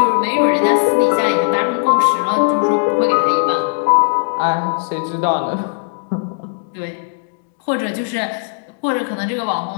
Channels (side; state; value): right; silent; digital silence